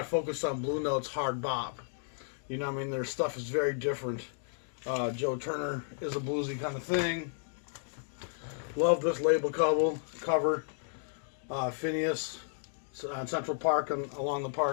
focused on Blue Note's hard bop. You know what I mean? Their stuff is very different. Joe Turner is a bluesy kind of thing. Love this label cover. Phineas on Central Park along the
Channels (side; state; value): right; silent; digital silence